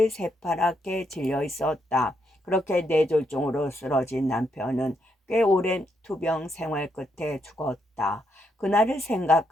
새파랗게 질려 있었다. 그렇게 뇌졸중으로 쓰러진 남편은 꽤 오랜 투병 생활 끝에 죽었다. 그날을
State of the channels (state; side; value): normal; both; correlation 0.78